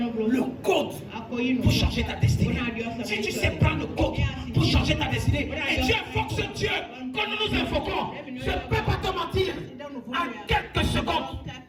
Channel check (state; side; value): identical; both; correlation 1.00